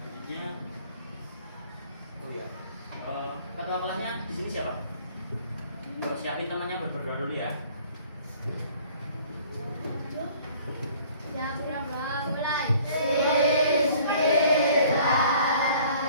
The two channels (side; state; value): both; inverted; correlation -0.54